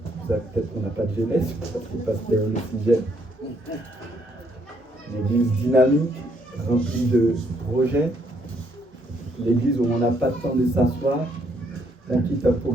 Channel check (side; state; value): both; normal; correlation 0.71